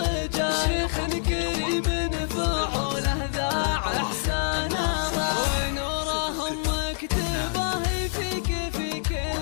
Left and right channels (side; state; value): right; silent; digital silence